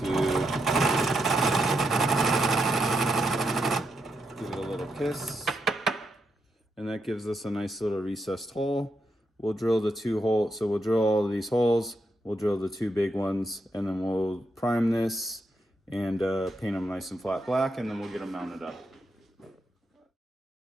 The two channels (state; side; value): normal; both; correlation 0.82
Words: give it a little kiss. And that gives us a nice little recessed hole. We'll drill the 2 holes. So we'll drill all of these holes. We'll drill the 2 big ones, and then we'll prime this and paint them nice and flat black, and then we'll get them mounted up.